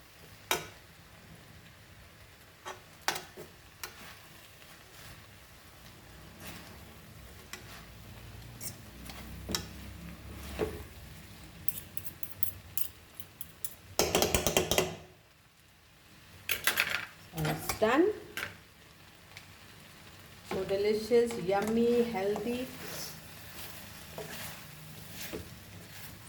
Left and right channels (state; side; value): identical; both; correlation 1.00